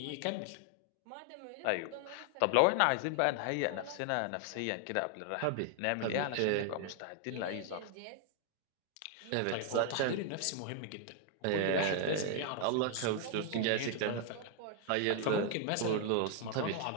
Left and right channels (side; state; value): both; different; correlation 0.00